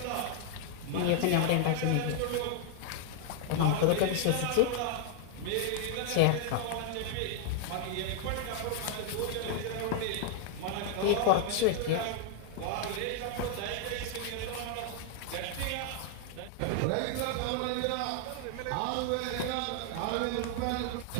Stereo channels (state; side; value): different; both; correlation 0.00